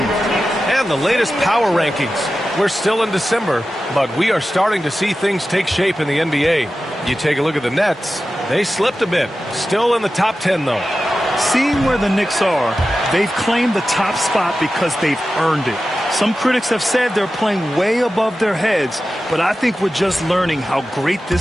And the latest power rankings. We're still in December, but we are starting to see things take shape in the NBA. You take a look at the Nets. They slipped a bit. Still in the top 10, though. Seeing where the Knicks are, they've claimed the top spot because they've earned it. Some critics have said they're playing way above their heads, but I think we're just learning how great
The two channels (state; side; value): normal; both; correlation 0.93